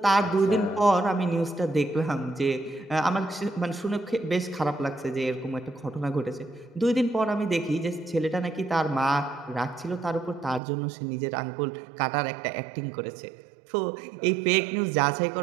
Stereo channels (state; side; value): drops out; left; at 10.6 s